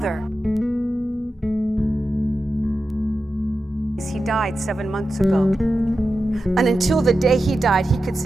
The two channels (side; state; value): both; normal; correlation 0.91